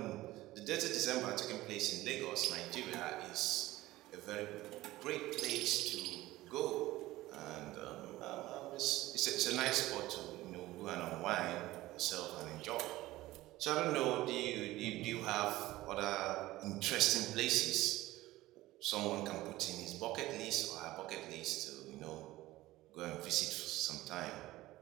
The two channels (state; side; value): quieter; left; 17.2 dB